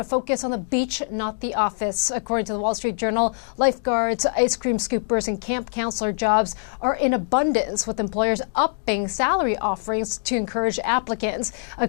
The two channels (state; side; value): silent; right; digital silence